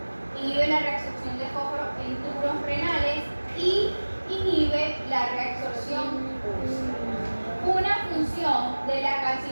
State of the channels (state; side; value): inverted; both; correlation -1.00